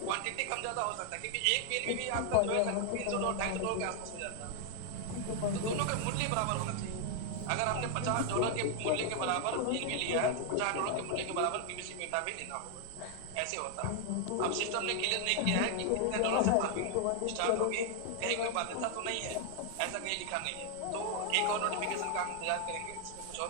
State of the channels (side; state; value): both; different; correlation 0.00